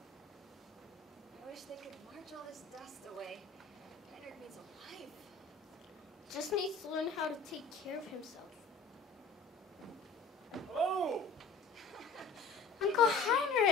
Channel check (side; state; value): right; quieter; 4.2 dB